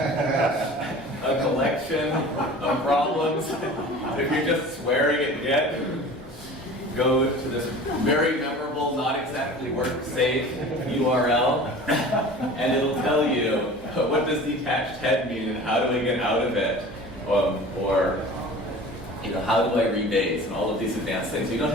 a collection of problems. If you're just swearing at Git, go to this very memorable, not exactly work-safe URL, and it'll tell you what does detached head mean and how do I get out of it, or how do I rebase and all of these advanced things. You don't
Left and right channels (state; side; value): normal; both; correlation 0.40